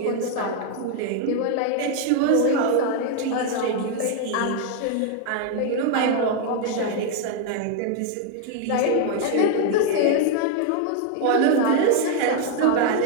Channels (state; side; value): different; both; correlation 0.00